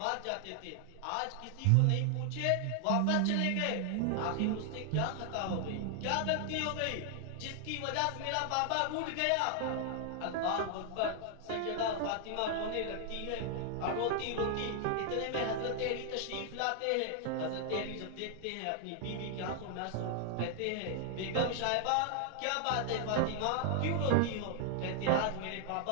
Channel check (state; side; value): different; both; correlation 0.00